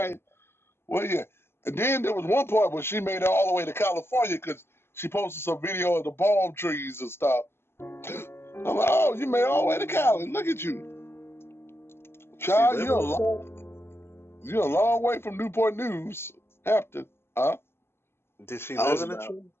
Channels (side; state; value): right; late; 0.12 ms